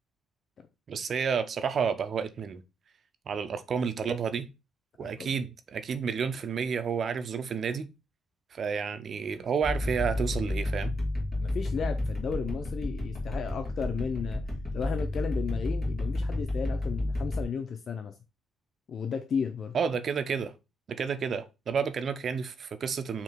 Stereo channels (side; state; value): both; normal; correlation 0.80